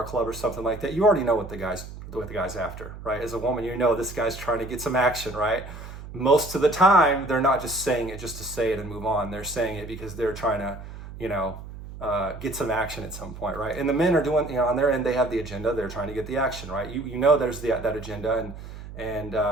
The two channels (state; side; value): noise; right; hum, 12 dB below the sound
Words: a club or something like that. You already know what the guy's after, right? As a woman, this guy's trying to get some action, right? Most of the time, they're not just saying it just to say it and move on. They're saying it because they're trying to, get some action at some point, right? And the men are doing, on their end, they have the agenda. They're trying to get the action, right? There's that agenda, and